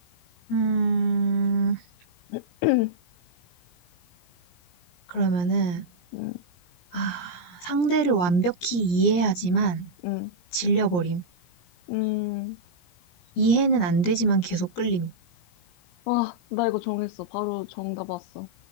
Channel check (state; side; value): late; right; 17 ms